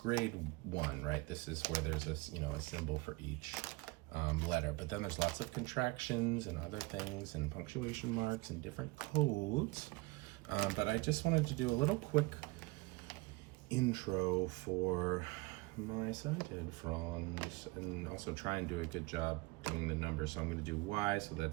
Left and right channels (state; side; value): quieter; left; 23.2 dB